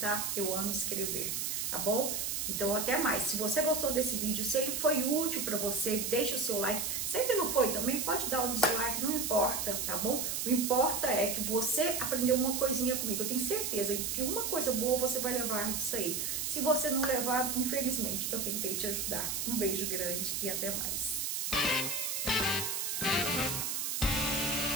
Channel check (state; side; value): noise; right; hiss, 1 dB below the sound